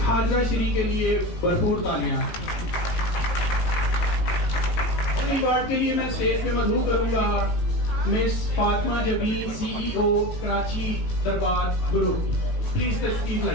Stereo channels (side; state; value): right; late; 18 ms